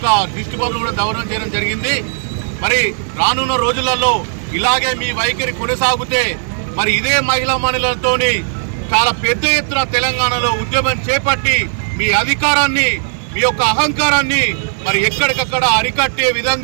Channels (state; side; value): silent; left; digital silence